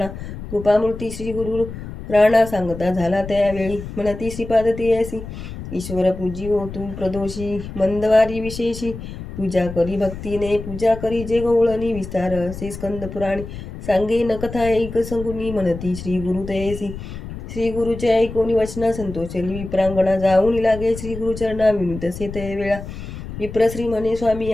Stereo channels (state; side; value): noise; left; rumble, 10 dB below the sound